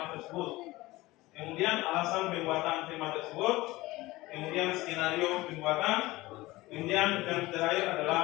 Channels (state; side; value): quieter; right; 19.4 dB